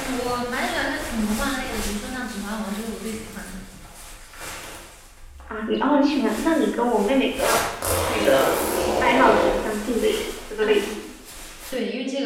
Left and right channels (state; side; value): identical; both; correlation 1.00